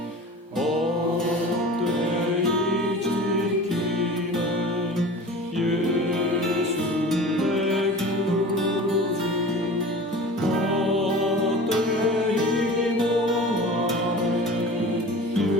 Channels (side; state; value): both; normal; correlation 0.38